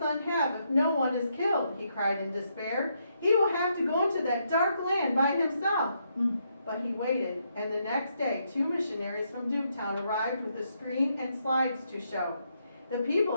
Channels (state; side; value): inverted; both; correlation -0.77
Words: have if no one is killed? He cried in despair. He will have to go into that dark land by himself. But he waited, and the next day 2 missionaries from Duketown arrived with a screen and slides to show. The people